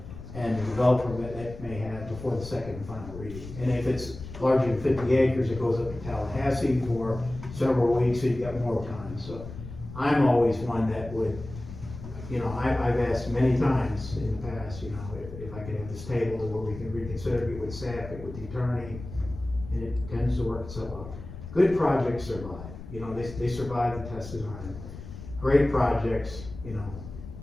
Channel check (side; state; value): left; noise; rumble, 12 dB below the sound